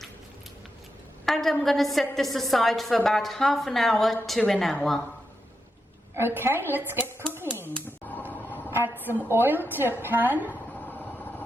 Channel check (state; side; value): normal; both; correlation 0.86